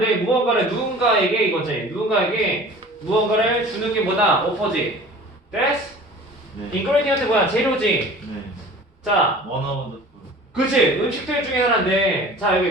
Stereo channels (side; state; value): both; normal; correlation 0.43